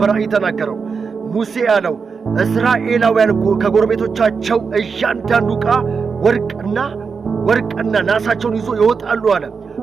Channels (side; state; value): left; quieter; 5.4 dB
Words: ተናገረው። ሙሴ ያለው እስራኤላውያን ከጎረቤቶቻቸው እያንዳንዱ ዕቃ ወርቅና ናሳቸውን ይዞ ይወጣሉ አለ።